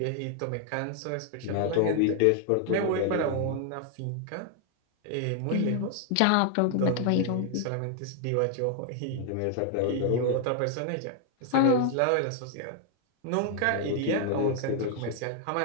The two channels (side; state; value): both; different; correlation 0.00